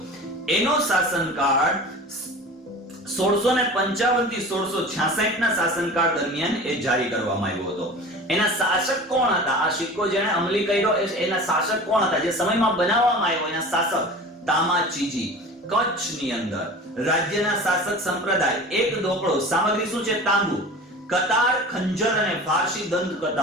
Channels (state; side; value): normal; both; correlation 0.37